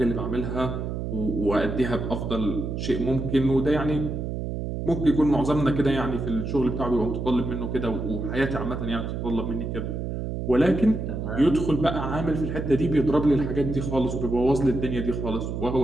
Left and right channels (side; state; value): right; noise; hum, 4 dB below the sound